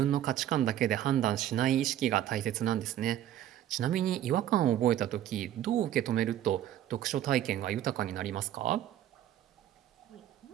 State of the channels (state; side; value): quieter; left; 11.9 dB